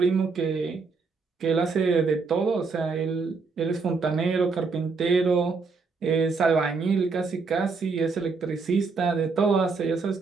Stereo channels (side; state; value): left; quieter; 4.5 dB